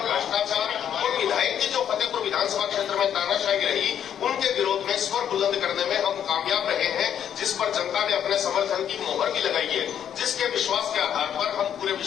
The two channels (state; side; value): quieter; right; 9.4 dB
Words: भ्रष्टाचार और विधायक की जो फतेहपुर विधानसभा क्षेत्र में तानाशाही रही उनके विरोध में स्वर बुलंद करने में हम कामयाब रहे हैं, जिस पर जनता ने अपने समर्थन की मोहर भी लगाई है, जिसके विश्वास के आधार पर हम पूरे